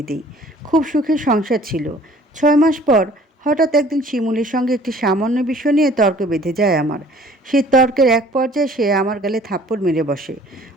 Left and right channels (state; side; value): normal; both; correlation 0.53